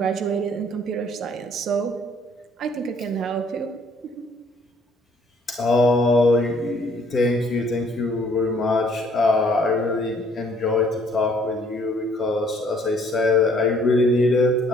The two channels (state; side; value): normal; both; correlation 0.61